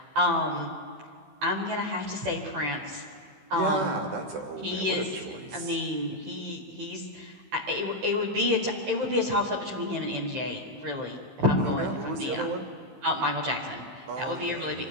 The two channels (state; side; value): late; left; 15 ms